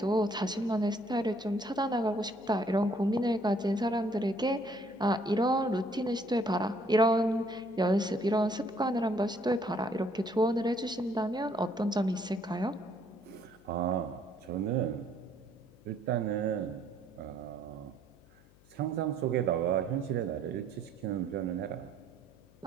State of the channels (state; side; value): noise; left; hum, 27 dB below the sound